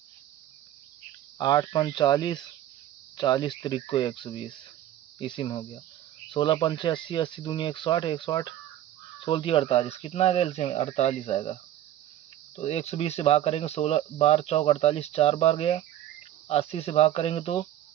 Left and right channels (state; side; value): quieter; left; 12.5 dB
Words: 8 5 40, 40 त्रिक को 120, इसी में हो गया। 16 पंचे 80, 80 दूनी 160, 160 16 थी 48, कितना आएगा एलसीएम, 48 आएगा। तो 120 से भाग करेंगे, 16 बार चौक 48, 4 बार गया। 80 से भाग करेंगे तो